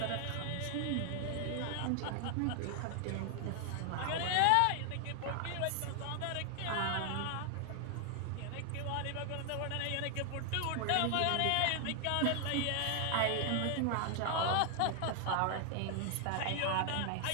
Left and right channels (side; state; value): both; different; correlation 0.00